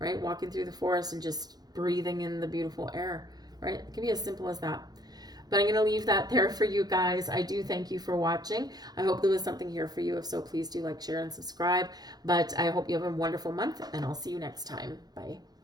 Walking through the forest and just breathing in the beautiful air, right? It can be as simple as that. But I'm going to leave that there for you guys. I do thank you for watching. I hope there was something here for you. If so, please do like, share, and subscribe. But I hope you have a wonderful month, and I'll see you next time. Bye.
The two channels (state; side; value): late; left; 0.19 ms